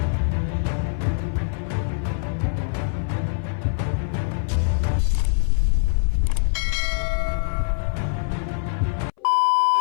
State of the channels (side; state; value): right; silent; 60 dB below the other